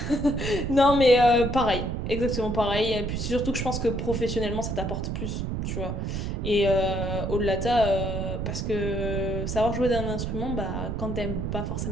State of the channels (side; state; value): right; noise; rumble, 3 dB below the sound